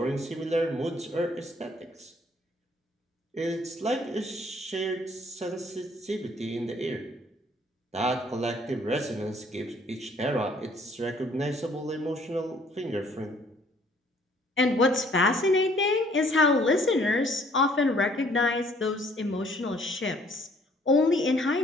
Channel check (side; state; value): both; normal; correlation 0.60